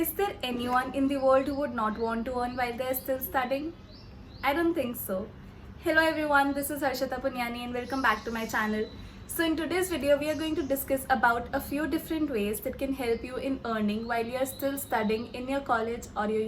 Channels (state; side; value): identical; both; correlation 1.00